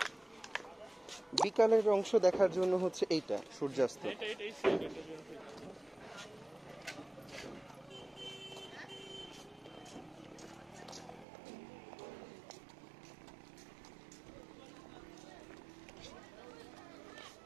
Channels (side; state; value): left; drops out; at 11.2 s